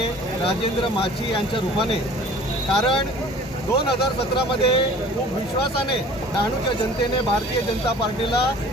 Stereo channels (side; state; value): both; normal; correlation 0.47